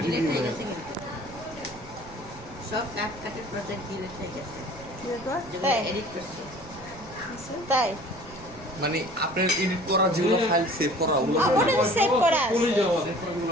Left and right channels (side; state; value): right; noise; rumble, 18 dB below the sound